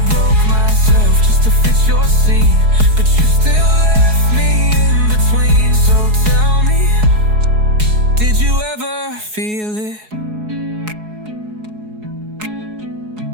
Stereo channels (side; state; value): left; late; 4.7 ms